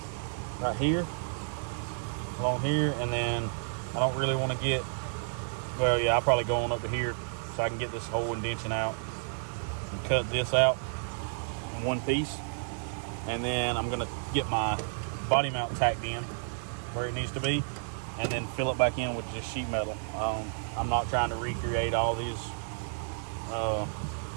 right here, along here, and then I don't really want to get, well, yeah, I'll probably go on up to here so I can get this whole indention out and cut this out in one piece. And then I'm gonna get my body mount tacked in where it needs to be, and then fill it back in with just sheet metal. I'm not trying to recreate all these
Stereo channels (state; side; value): silent; left; digital silence